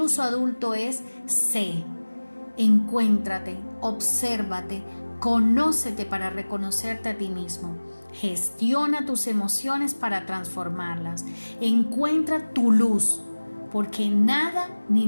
adulto es sé. Encuéntrate, obsérvate, conócete para reconocerte a ti mismo. Gestiona tus emociones para transformarlas. Encuentra tu luz, porque nada ni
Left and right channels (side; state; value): both; inverted; correlation -1.00